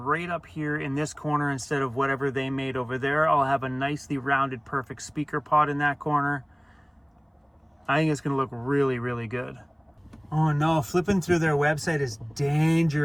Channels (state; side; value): identical; both; correlation 1.00